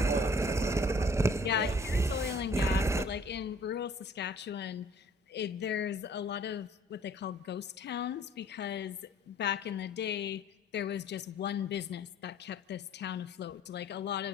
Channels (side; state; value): both; normal; correlation 0.55